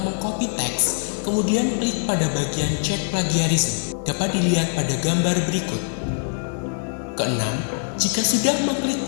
mengcopy teks, kemudian klik pada bagian cek plagiarisme. Dapat dilihat pada gambar berikut. Keenam, jika sudah mengklik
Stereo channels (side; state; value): right; silent; 58 dB below the other